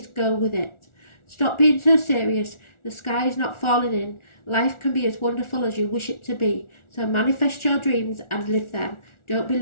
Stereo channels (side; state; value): right; late; 1.4 ms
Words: go with it. Stop being so serious. The sky is not falling in. Life can be as wonderful as you wish it to be. So manifest your dreams and live them. Don't be